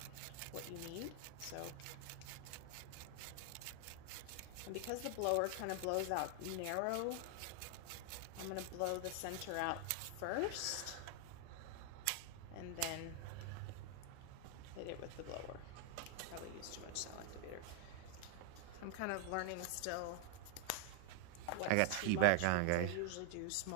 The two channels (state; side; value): different; both; correlation 0.00